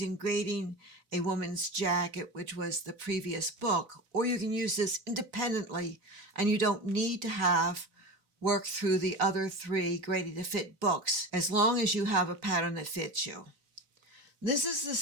Grading a Woman's Jacket, which was the previous book, or you can use this independently and you don't need to have worked through the other 3 Graded to Fit books, as long as you have a pattern that fits you. This is the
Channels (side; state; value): left; late; 4.0 ms